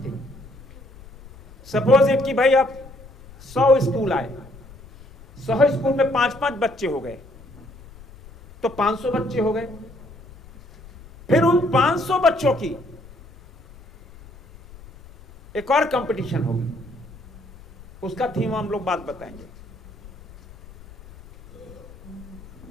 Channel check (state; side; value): noise; left; rumble, 21 dB below the sound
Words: सपोज इट कि भाई अब 100 स्कूल आए, 100 स्कूल में 5-5 बच्चे हो गए तो 500 बच्चे हो गए। फिर उन 500 बच्चों की एक और कंपटीशन होगी, उसका थीम हम लोग बात बताएंगे।